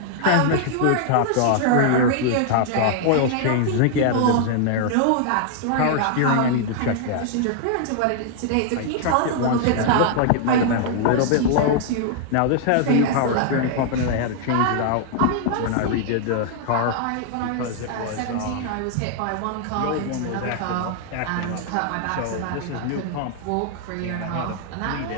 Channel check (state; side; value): different; both; correlation 0.00